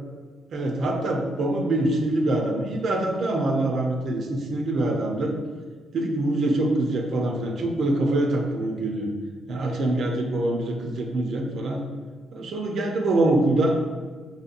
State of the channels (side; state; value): both; normal; correlation 0.76